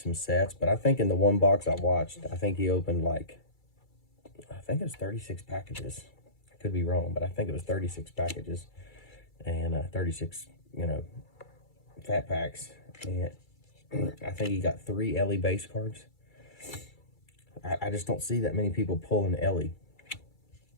sets. But I think in the one box I watched, I think he opened like, I think it was 36 packages. I could be wrong, but I think it was 36 packages and 36, you know, Fat Packs. And I think he got 3 Ellie base cards. I just don't see that many people pulling Ellie.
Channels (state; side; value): late; right; 2.3 ms